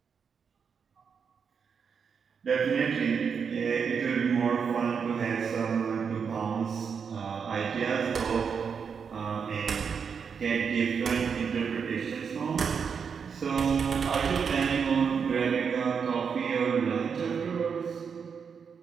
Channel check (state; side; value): quieter; left; 6.4 dB